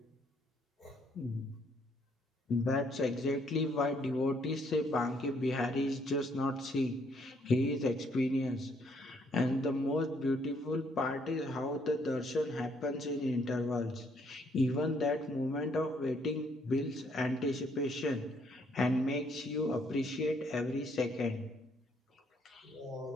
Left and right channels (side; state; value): both; normal; correlation 0.69